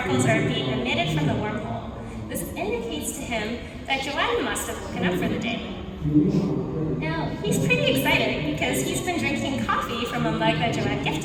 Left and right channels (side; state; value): both; identical; correlation 1.00